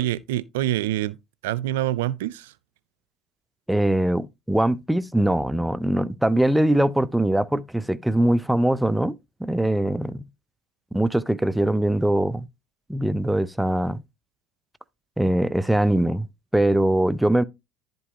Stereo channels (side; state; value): both; normal; correlation 0.89